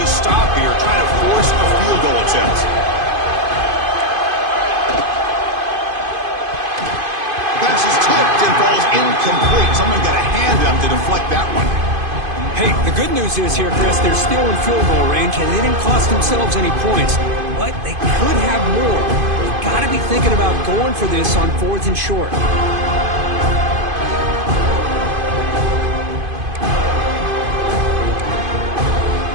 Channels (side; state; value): left; late; 2.5 ms